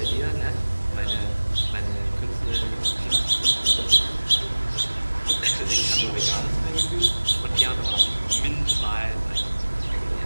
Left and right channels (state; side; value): inverted; both; correlation -1.00